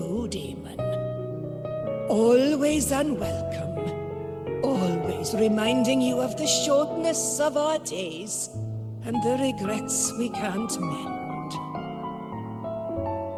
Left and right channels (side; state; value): both; identical; correlation 1.00